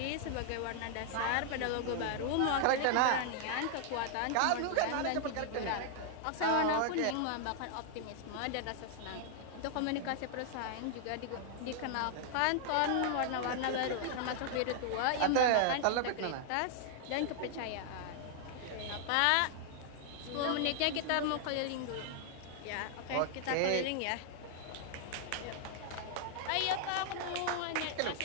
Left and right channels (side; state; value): both; different; correlation 0.00